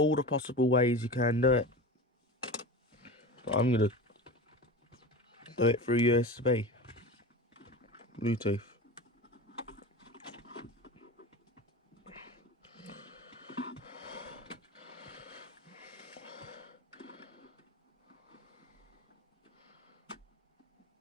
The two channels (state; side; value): normal; both; correlation 0.30